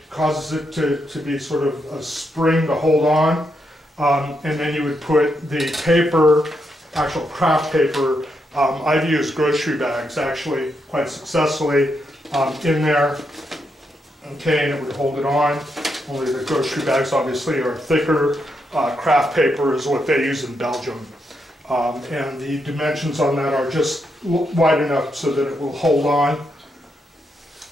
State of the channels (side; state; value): both; normal; correlation 0.81